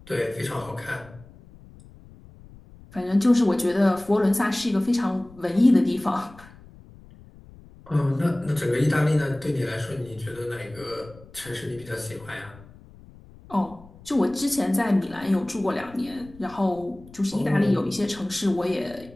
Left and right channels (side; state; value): left; noise; rumble, 22 dB below the sound